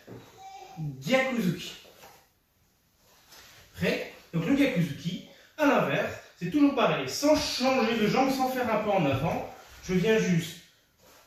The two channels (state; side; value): identical; both; correlation 1.00